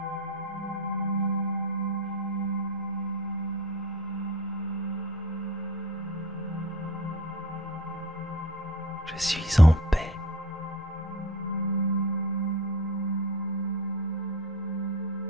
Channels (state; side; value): normal; both; correlation 0.38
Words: Je suis en paix.